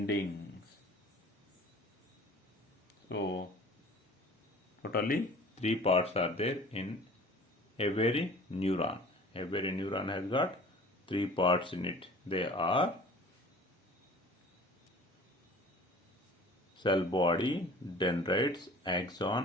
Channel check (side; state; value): both; normal; correlation 0.46